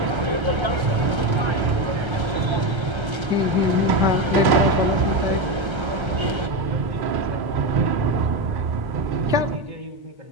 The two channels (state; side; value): late; left; 1.3 ms